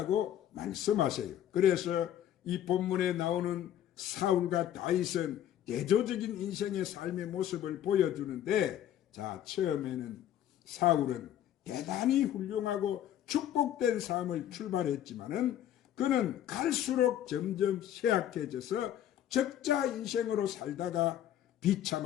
말씀하세요. 그래서 이 본문에 나오는 사울과 다윗은 대조적인 인생의 삶의 모습을 보여주는데, 자, 처음에는 사울은 대단히 훌륭하고 축복된 삶을 출발했지만은 그는 갈수록 점점 쇠약해져서 적자 인생으로 살다가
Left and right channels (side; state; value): right; quieter; 11.1 dB